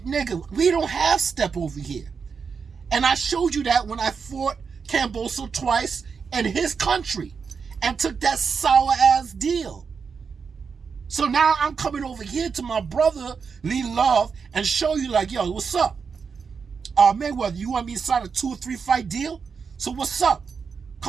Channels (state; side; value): quieter; left; 5.7 dB